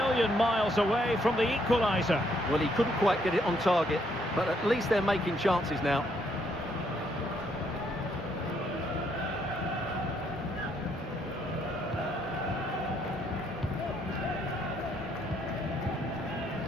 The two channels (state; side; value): normal; both; correlation 0.71